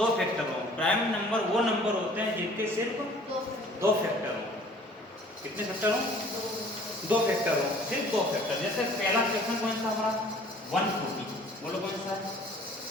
फैक्टर हो। प्राइम नंबर वो नंबर होते हैं जिनके सिर्फ दो फैक्टर हो। कितने फैक्टर हो? दो फैक्टर हो, सिर्फ दो फैक्टर। जैसे पहला क्वेश्चन कौन सा हमारा 140, बोलो कौन सा?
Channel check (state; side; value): normal; both; correlation 0.52